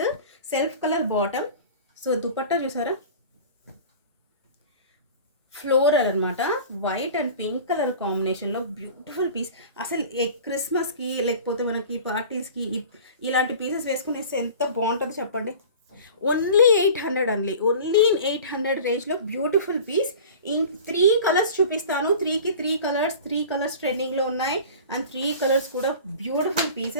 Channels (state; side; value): inverted; both; correlation -0.39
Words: Self colour bottom. So dupatta చూసారా, ఫ్లోరల్ అనమాట. వైట్ అండ్ పింక్ కలర్ కాంబినేషన్లో బ్యూటిఫుల్ పీస్. అసలు క్రిస్మస్కి లేకపోతే మనకి పార్టీస్కి ఇలాంటి పీసెస్ వేసుకునేస్తే ఎంత బాగుంటుందో చెప్పండి. ఓన్లీ 800 అండి, ఓన్లీ ఇన్ 800 రేంజ్లో బ్యూటిఫుల్ పీస్. ఇన్ 3 కలర్స్ చూపిస్తాను. 3కి 3 కలర్స్ ట్రెండింగ్లో ఉన్నాయి. అండ్ 3 కలర్స్ కూడా బ్యూటిఫుల్